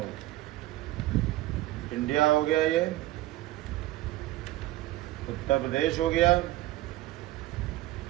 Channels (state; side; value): quieter; left; 16.8 dB